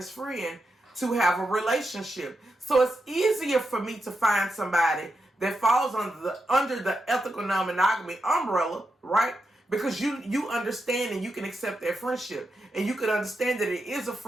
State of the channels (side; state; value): both; normal; correlation 0.86